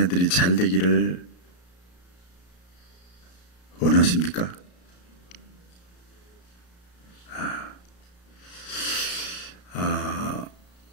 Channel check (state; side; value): late; right; 33 ms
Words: 잘 되기를 원하십니까?